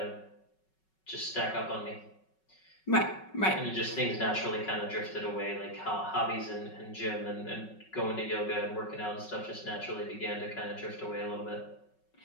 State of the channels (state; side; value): late; right; 5.4 ms